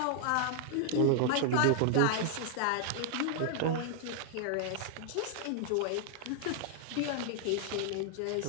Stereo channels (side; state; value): both; different; correlation 0.00